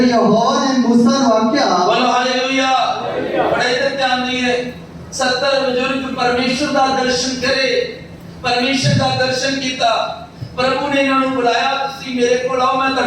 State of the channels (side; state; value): both; identical; correlation 1.00